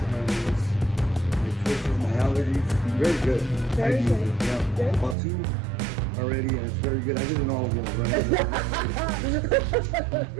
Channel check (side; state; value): left; drops out; at 5.2 s